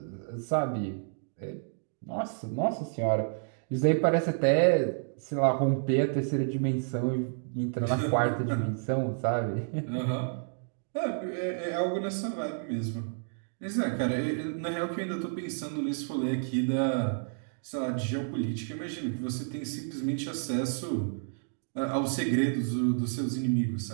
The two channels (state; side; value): silent; left; digital silence